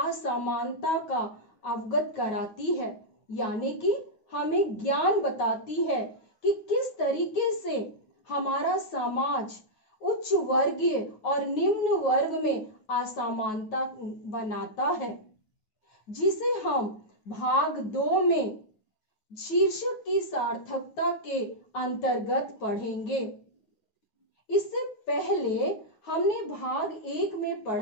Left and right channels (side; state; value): right; late; 9.3 ms